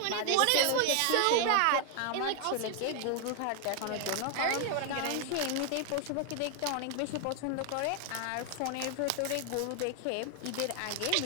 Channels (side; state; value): both; different; correlation 0.00